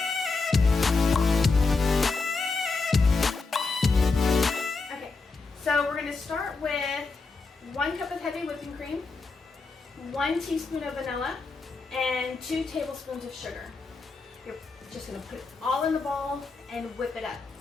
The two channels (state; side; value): quieter; right; 4.1 dB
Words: So we're going to start with 1 cup of heavy whipping cream, 1 teaspoon of vanilla, and 2 tablespoons of sugar. You're just going to put it all in the bowl and whip it up.